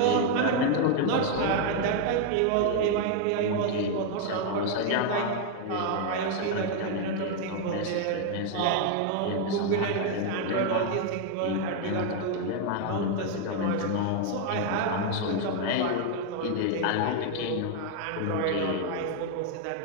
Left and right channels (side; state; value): both; different; correlation 0.00